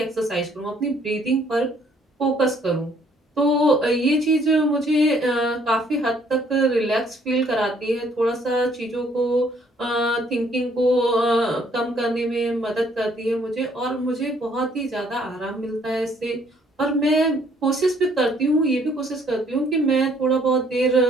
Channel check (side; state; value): both; normal; correlation 0.64